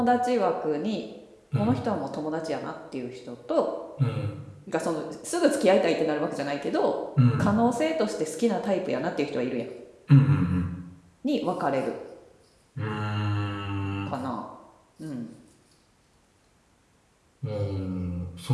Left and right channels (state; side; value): identical; both; correlation 1.00